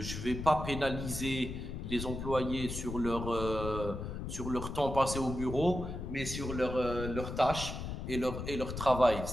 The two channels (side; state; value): left; noise; rumble, 6 dB below the sound